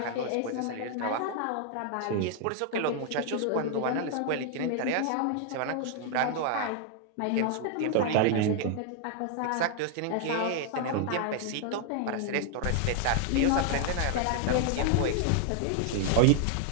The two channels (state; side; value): different; both; correlation 0.00